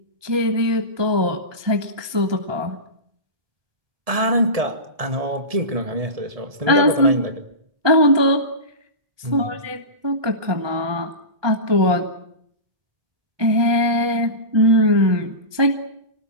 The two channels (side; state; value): left; late; 1.2 ms